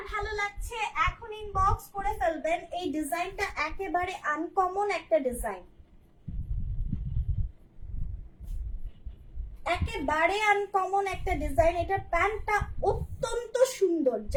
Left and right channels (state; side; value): identical; both; correlation 1.00